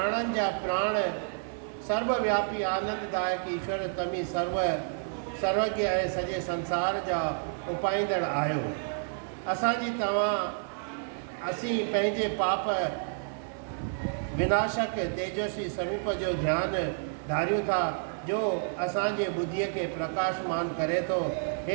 जा प्राण सर्वव्यापी आनंददायक ईश्वर तमी सर्वज्ञ ऐं सॼे संसार जा उपाईंदड़ आहियो। असीं पंहिंजे पाप विनाशक तेजस्वी स्वरूप जो ध्यानु धारियूं था जो असांजे बुद्धीअ खे प्रकाशमान करे थो।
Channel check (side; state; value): left; silent; 58 dB below the other